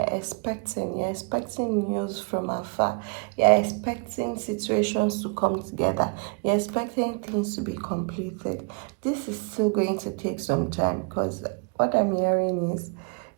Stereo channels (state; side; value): quieter; left; 34.7 dB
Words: expecting news from afar, you're expecting situations to come together, you're expecting things to be completed. This is still going to take some time, because what I'm hearing is